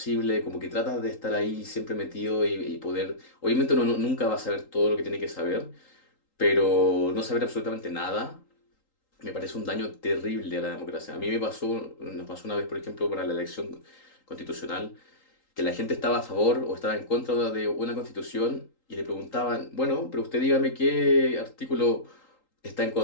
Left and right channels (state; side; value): late; right; 3.8 ms